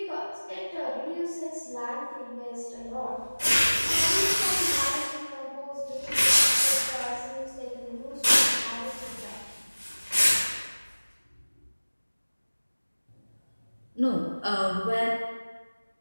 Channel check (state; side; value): inverted; both; correlation -1.00